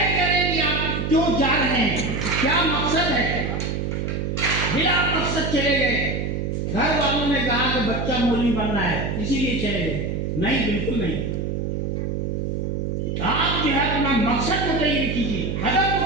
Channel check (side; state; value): right; noise; hum, 2 dB below the sound